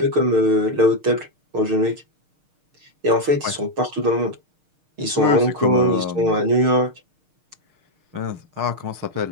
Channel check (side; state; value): left; late; 6.5 ms